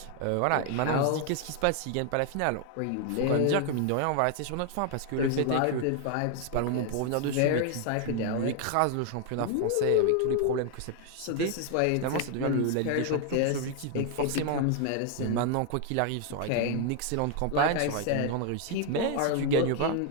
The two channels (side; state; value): both; different; correlation 0.00